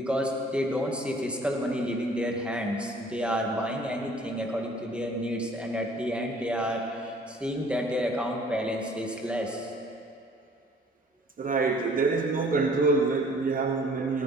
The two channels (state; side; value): normal; both; correlation 0.54